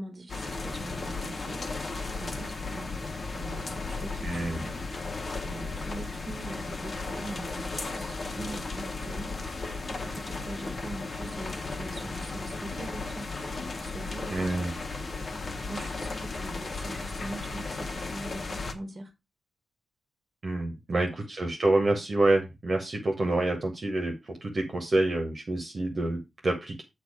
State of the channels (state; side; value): normal; both; correlation 0.91